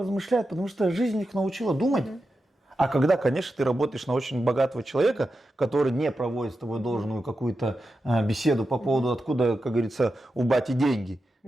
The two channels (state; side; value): normal; both; correlation 0.90